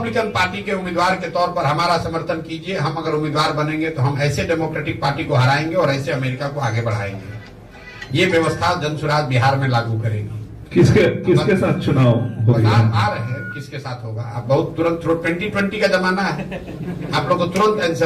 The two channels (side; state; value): both; identical; correlation 1.00